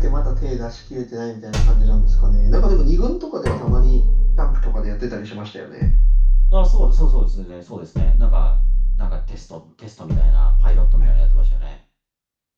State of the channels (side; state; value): both; identical; correlation 1.00